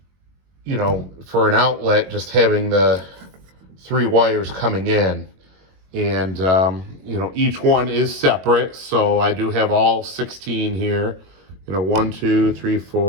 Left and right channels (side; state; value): left; late; 21 ms